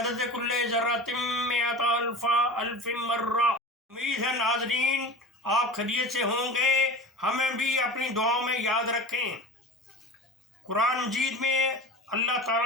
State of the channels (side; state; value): both; normal; correlation 0.33